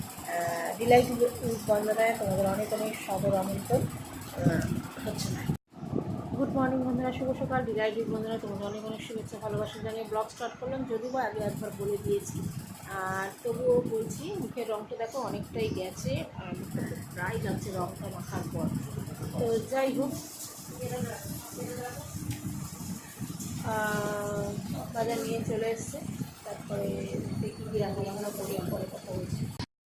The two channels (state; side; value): identical; both; correlation 1.00